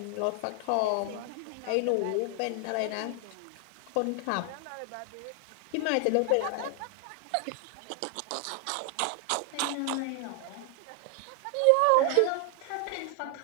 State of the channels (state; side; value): different; both; correlation 0.00